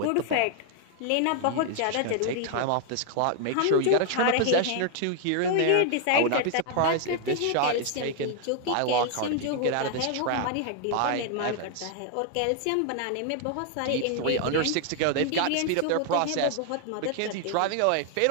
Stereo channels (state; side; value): different; both; correlation 0.00